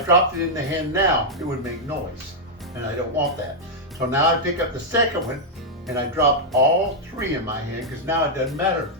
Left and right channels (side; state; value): both; normal; correlation -0.04